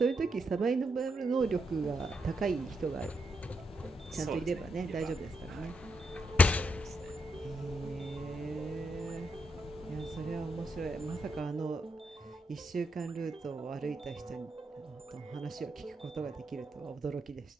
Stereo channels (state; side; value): normal; both; correlation 0.80